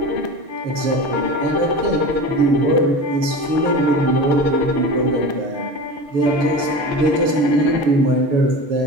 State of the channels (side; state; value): left; late; 6.6 ms